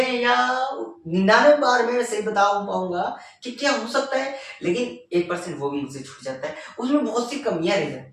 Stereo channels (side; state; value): both; identical; correlation 1.00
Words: या 99 बार में सही बता पाऊंगा कि क्या हो सकता है, लेकिन 1% वो भी मुझसे छूट जाता है, उसमें बहुत सी कमियां रह